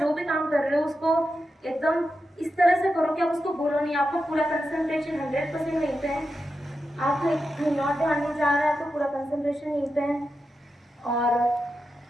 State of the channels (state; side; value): normal; both; correlation 0.89